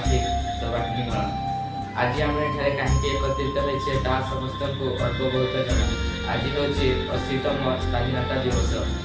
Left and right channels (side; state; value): both; identical; correlation 1.00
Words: गण आज आम एठारे कहीं एकत्रित होइछे ता समस्त को अल्प बहुत जन। आज हूँ 80तम स्वाधीनता दिवस।